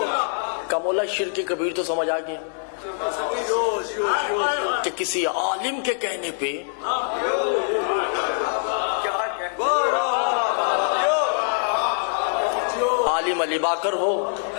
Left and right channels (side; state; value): right; silent; digital silence